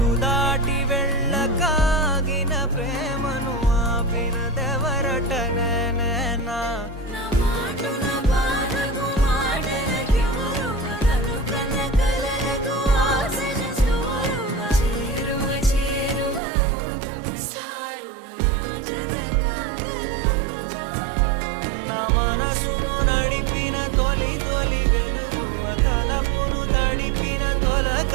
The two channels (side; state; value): left; drops out; at 16.4 s